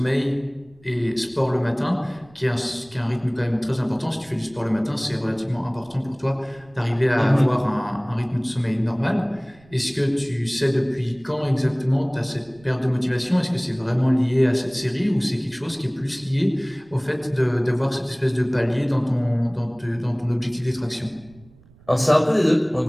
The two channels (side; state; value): right; noise; rumble, 27 dB below the sound